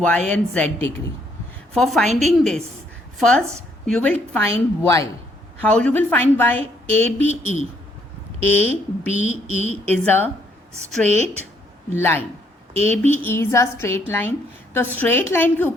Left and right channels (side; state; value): both; normal; correlation 0.69